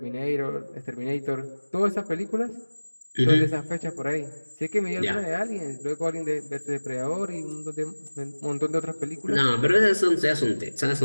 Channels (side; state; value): both; inverted; correlation -1.00